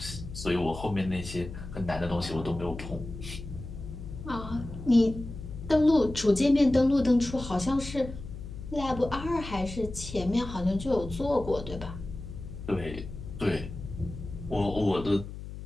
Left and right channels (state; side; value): noise; left; hum, 10 dB below the sound